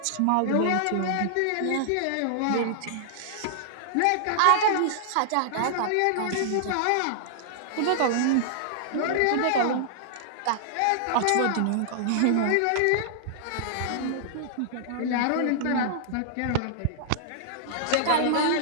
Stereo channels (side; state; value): both; different; correlation -0.01